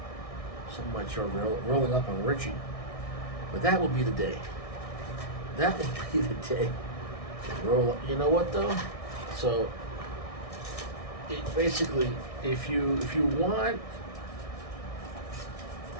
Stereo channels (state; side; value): late; right; 1.6 ms